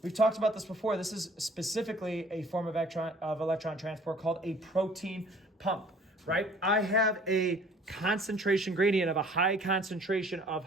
We've talked about this before. This is specifically a form of electron transport called a protein pump, right? I have a concentration gradient of a high concentration of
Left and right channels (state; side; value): normal; both; correlation 0.53